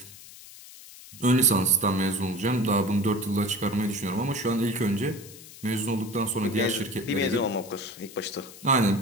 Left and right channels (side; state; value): left; noise; hiss, 18 dB below the sound